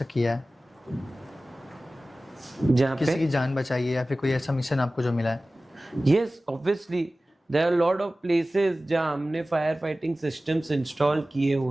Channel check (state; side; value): normal; both; correlation 0.97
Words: किया है, जहाँ किसी पे की जान बचाई है, या फिर कोई ऐसा मिशन आपको जो मिला है? yes obviously there are a lot of places जहाँ हमने फायर फाइटिंग सिस्टम्स इंस्टॉल किए